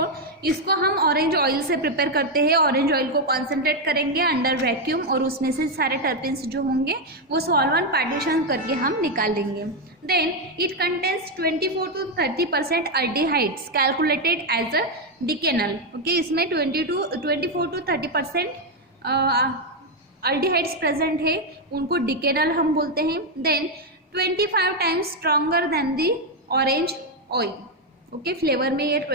इसको हम ऑरेंज ऑयल से प्रिपेयर करते हैं, ऑरेंज ऑयल को कॉन्सेंट्रेट करेंगे अंडर वैक्यूम और उसमें से सारे टर्पिन्स जो होंगे वो सॉल्वेंट पार्टीशन करके हम निकाल लेंगे। Then it contains 24 to 30% aldehydes calculated as a decanal, okay. इसमें 24 to 30% अल्डिहाइड्स प्रेजेंट है, उनको डिकेनल हम बोलते हैं। Then 25 times stronger than the orange oil, okay. Flavour में ये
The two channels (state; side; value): normal; both; correlation 0.04